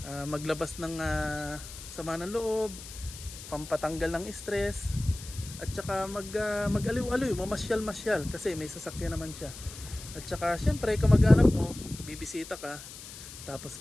maglabas ng sama ng loob, pampatanggal ng stress, at saka mag-aliw-aliw, mamasyal-masyal kasi may sasakyan naman siya. At saka syempre kamag-anak mo, bibisita ka, tapos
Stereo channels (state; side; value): noise; left; hiss, 14 dB below the sound